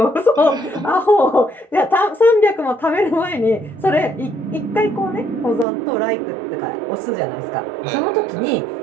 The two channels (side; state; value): left; drops out; at 5.7 s